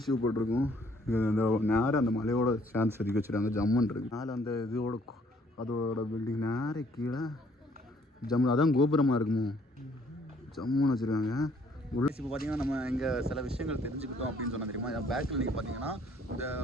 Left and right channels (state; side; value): normal; both; correlation 0.63